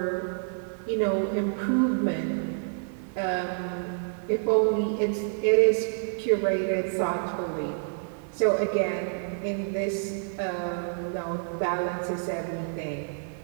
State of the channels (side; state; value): left; silent; digital silence